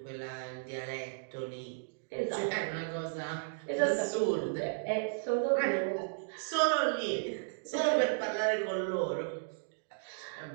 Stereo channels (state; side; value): silent; left; digital silence